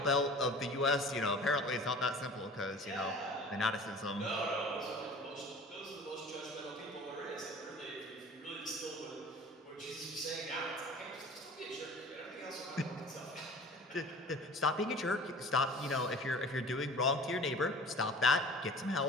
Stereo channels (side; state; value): both; normal; correlation 0.42